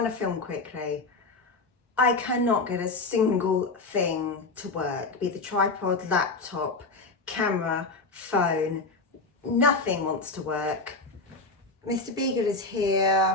to film quickly. I cannot get a single thing to work, be it the tripod, laptop, camera, phone, nothing wants to work. Mr. Beagle is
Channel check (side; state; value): right; quieter; 3.5 dB